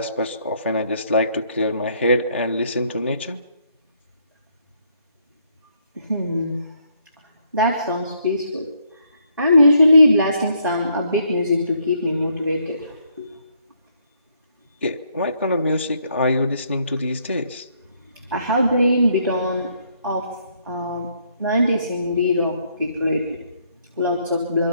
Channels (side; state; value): both; inverted; correlation -0.71